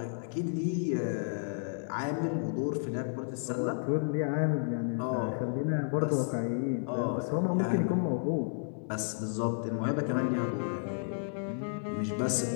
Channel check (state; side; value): silent; right; 56 dB below the other